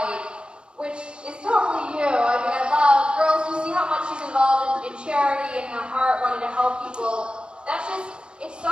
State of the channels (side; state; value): left; late; 0.055 ms